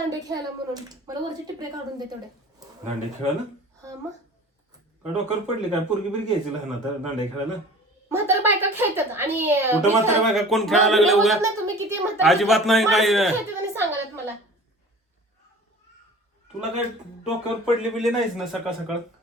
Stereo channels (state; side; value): normal; both; correlation 0.42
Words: खेळायला म्हणून मला वरचे टिपरे काढून दे तेवढे दांडे खेळायला हा मग काय डोक्यावर पडले काय पोरगी बिरगी घ्यायची लहान आता दांडे खेळायला म्हातारा बायका खेळतात आणि कुठं म्हातारा बायका कोण खेळायला लागले उगा ना तुम्ही किती म्हातारा अजिबात नाही काय खेळतात आणि सांगायला मला तुला काय डोक्यावर पडले बिले नाहीच ना सकाळ सकाळ